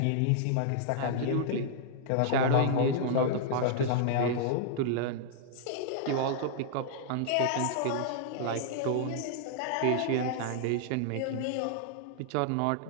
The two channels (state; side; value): different; both; correlation -0.01